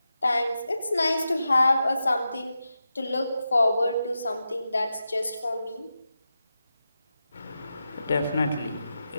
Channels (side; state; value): both; inverted; correlation -0.90